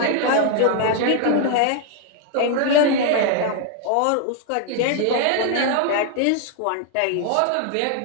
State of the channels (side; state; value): both; different; correlation 0.00